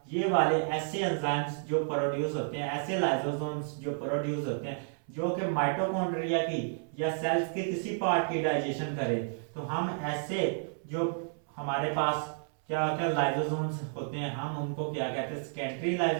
ये वाले ऐसे एंजाइम्स जो प्रोड्यूस होते हैं, ऐसे लाइसोसोम्स जो प्रोड्यूस होते हैं, जो कि माइटोकॉन्ड्रिया की या सेल्स के किसी पार्ट की डाइजेशन करें, तो हम ऐसे जो हमारे पास क्या होता है, लाइसोसोम्स होते हैं, हम उनको क्या कहते हैं, सेकेंडरी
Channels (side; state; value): left; silent; 57 dB below the other